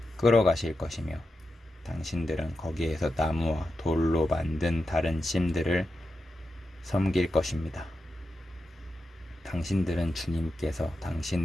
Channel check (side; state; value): both; normal; correlation 0.89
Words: 끌어가실 것이며 당신들은 거기에서 나무와 돌로 만든 다른 신들을 섬길 것입니다. 당신들은 주님께서